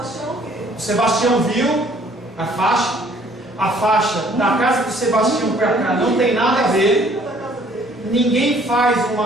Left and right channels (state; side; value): normal; both; correlation 0.59